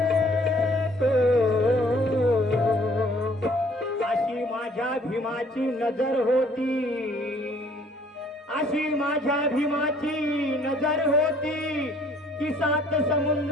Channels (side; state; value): both; normal; correlation 0.59